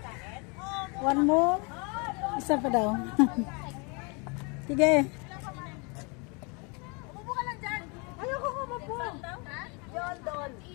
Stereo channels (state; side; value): quieter; right; 31.9 dB